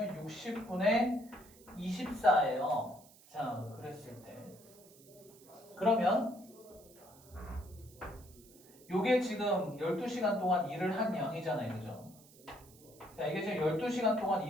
60분의 24예요. 자, 그랬을 때 그러면 요게 지금 12시간 동안 일을 한 양이잖아요. 그죠? 자, 이게 지금 12시간 동안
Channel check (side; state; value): right; noise; hiss, 24 dB below the sound